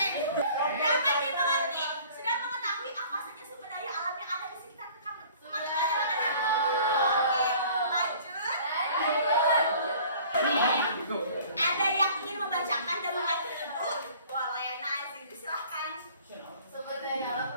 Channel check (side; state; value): both; inverted; correlation -0.50